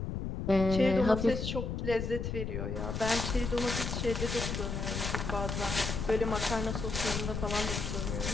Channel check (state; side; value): noise; left; rumble, 3 dB below the sound